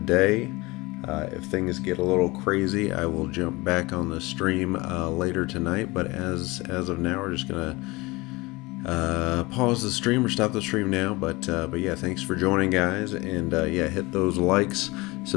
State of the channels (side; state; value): right; quieter; 23.1 dB